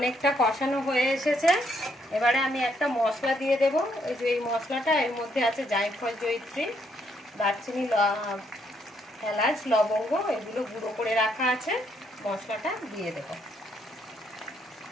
কষানো হয়ে এসেছে, এবারে আমি একটা মশলা দিয়ে দেব। এই যে এই মশলাটা, এর মধ্যে আছে জায়ফল, জয়িত্রী, দারচিনি, এলাচ, লবঙ্গ, এগুলো গুঁড়ো করে রাখা আছে। মশলাটা দিয়ে দেব।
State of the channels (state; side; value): normal; both; correlation 0.73